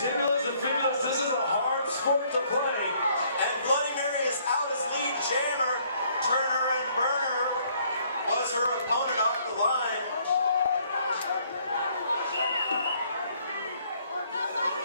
and fibulas. This is a hard sport to play. And Bloody Mary is out as lead jammer. Turner and Burner was her opponent off the line.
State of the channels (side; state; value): both; inverted; correlation -0.64